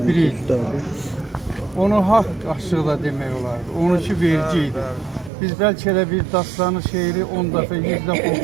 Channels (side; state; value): left; drops out; at 5.3 s